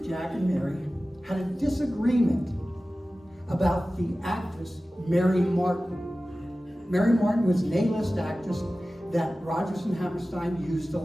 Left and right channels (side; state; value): both; normal; correlation 0.96